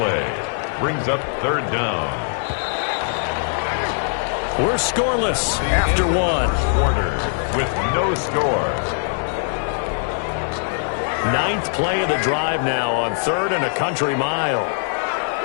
Brings up third down. We're scoreless after 1. Quarter with no score. 9th play of the drive now on 3rd and a country mile.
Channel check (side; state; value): right; silent; digital silence